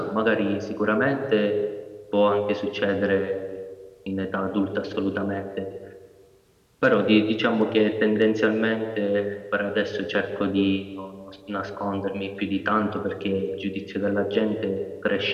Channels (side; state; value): both; identical; correlation 1.00